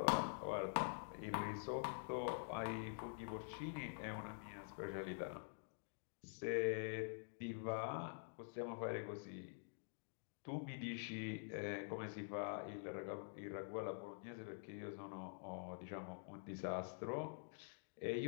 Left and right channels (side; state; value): right; silent; digital silence